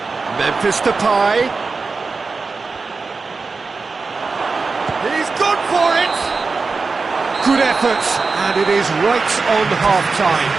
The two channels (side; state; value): left; quieter; 4.3 dB